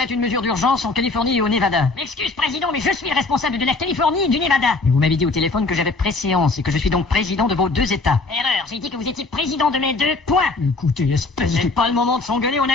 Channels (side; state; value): right; quieter; 3.6 dB